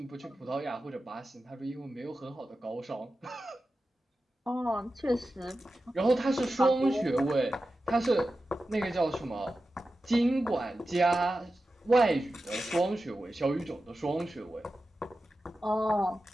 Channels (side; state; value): both; normal; correlation 0.93